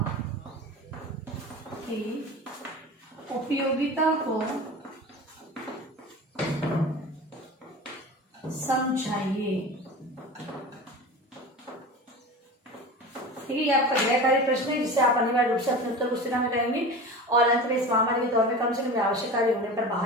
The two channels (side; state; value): both; normal; correlation 0.32